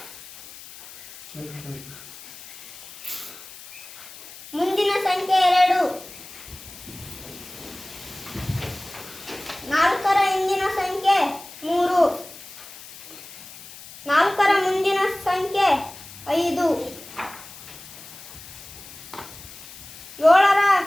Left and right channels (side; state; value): left; noise; hiss, 16 dB below the sound